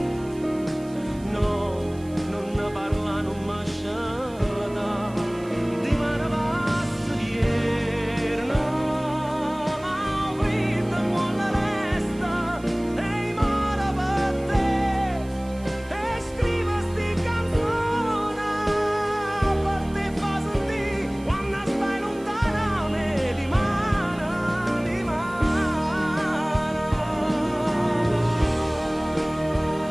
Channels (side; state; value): right; noise; hiss, 24 dB below the sound